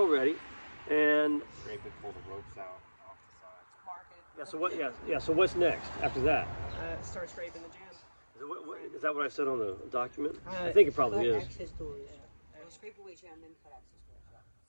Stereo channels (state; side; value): inverted; both; correlation -1.00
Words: ready. And Scrape it, pull the ropes out off the side. Mark it. so what? So what's next after that? Start scraping the jam. Is that what I said on the document? I think it probably is. Access doors. Scrape away jam, then cut access doors.